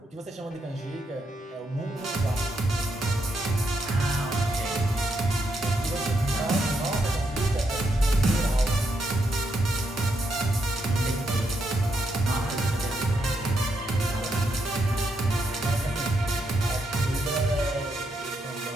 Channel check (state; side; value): normal; both; correlation 0.79